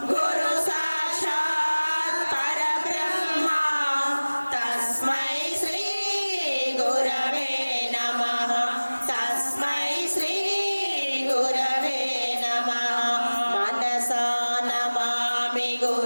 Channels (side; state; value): both; inverted; correlation -1.00